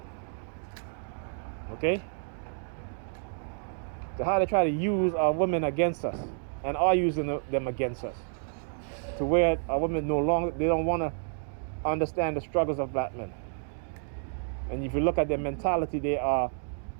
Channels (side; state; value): left; silent; 58 dB below the other